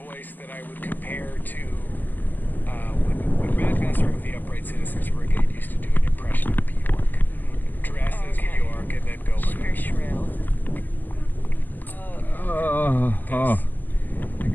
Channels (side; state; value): right; late; 0.087 ms